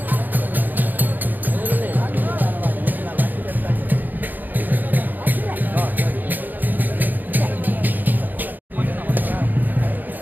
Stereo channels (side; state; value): left; late; 0.086 ms